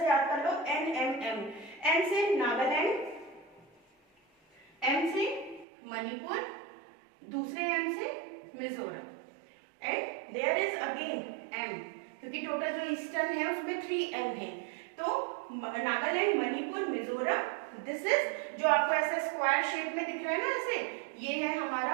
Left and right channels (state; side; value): drops out; left; at 5.7 s